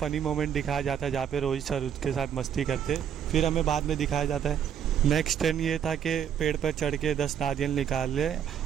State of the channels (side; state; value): left; quieter; 8.7 dB